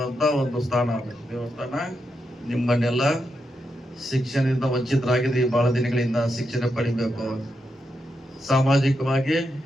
ಒಂದು ಸ್ಥಾನ ಆಗಬೇಕು. ದೇವಸ್ಥಾನ ನಿಮ್ಮನ್ನೆಲ್ಲ ಶಿಕ್ಷಣದಿಂದ ವಂಚಿತರಾಗಿದ್ರಿ, ಬಹಳ ದಿನಗಳಿಂದ ಶಿಕ್ಷಣ ಪಡಿಬೇಕು, ಸಾಮಾಜಿಕವಾಗಿ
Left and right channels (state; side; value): normal; both; correlation 0.84